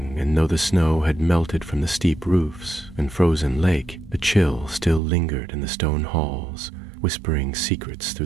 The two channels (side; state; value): left; drops out; at 5.0 s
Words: and though the snow had melted from the steep roofs and frozen lake, the chill still lingered in the stone halls, whispering secrets through